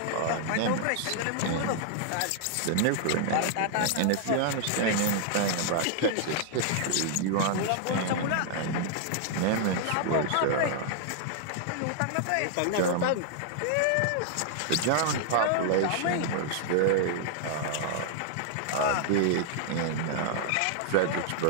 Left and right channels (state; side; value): different; both; correlation -0.01